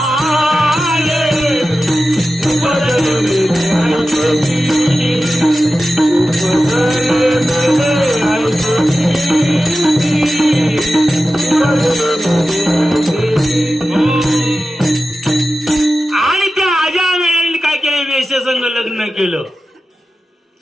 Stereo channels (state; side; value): normal; both; correlation 0.93